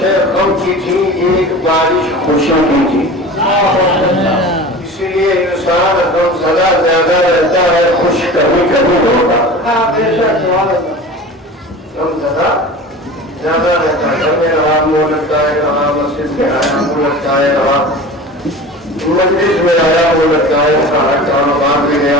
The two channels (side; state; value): both; normal; correlation 0.36